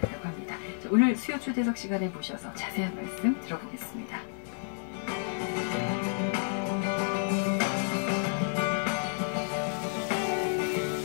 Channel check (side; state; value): right; silent; digital silence